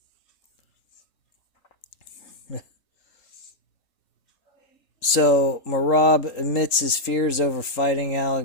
So, Merab admits his fears over fighting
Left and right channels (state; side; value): late; right; 3.8 ms